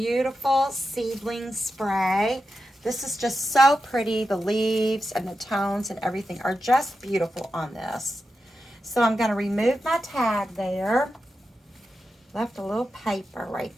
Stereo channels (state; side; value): normal; both; correlation 0.90